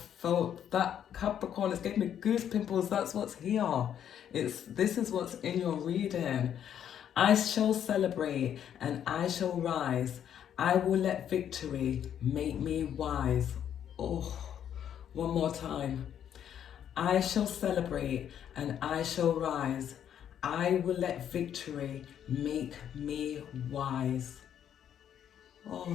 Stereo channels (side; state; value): right; quieter; 9.5 dB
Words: that, Capricorn. It's giving me goose pimples. That's what's here. This is what's in your reading. I shall celebrate and I shall rise. I will let victory make me wise. Oh, one more time. I shall celebrate and I shall rise. I will let victory make me wise.